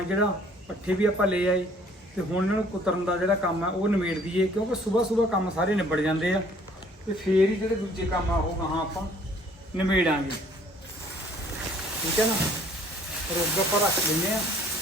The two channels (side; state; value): both; normal; correlation 0.57